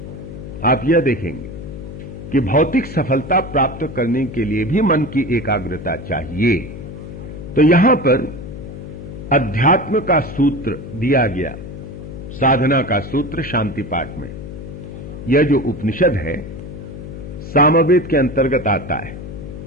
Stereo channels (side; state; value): left; noise; hum, 11 dB below the sound